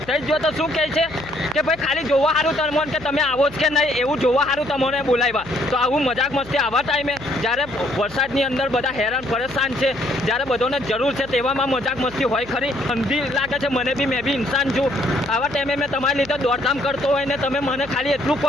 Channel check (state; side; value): noise; left; hum, 19 dB below the sound